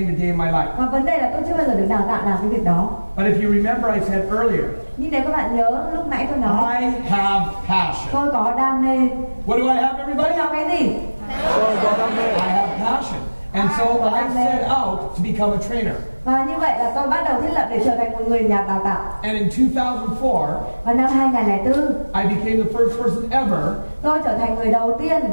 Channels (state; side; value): inverted; both; correlation -1.00